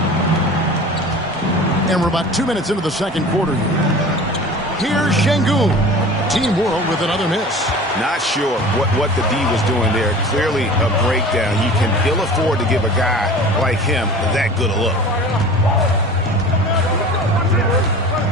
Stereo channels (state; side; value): normal; both; correlation 0.39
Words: And we're about 2 minutes into the second quarter here. Here's Şengün. Team World with another miss. Not sure what the D was doing there. Clearly a breakdown. You can ill afford to give a guy like him that good a look.